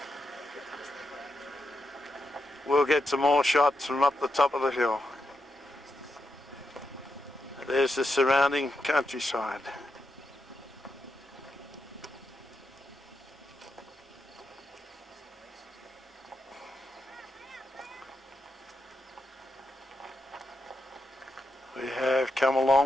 We'll get some more shots from up the top of the hill. There's the surrounding countryside. We have come a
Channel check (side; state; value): both; normal; correlation 0.84